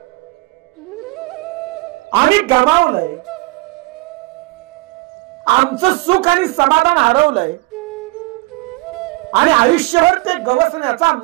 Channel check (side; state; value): left; quieter; 23.5 dB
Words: आम्ही गमावलंय. आमचं सुख आणि समाधान हरवलंय आणि आयुष्यभर ते गवसण्याचा